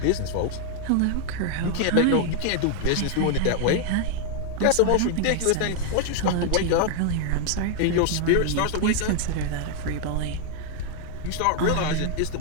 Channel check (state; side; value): different; both; correlation 0.00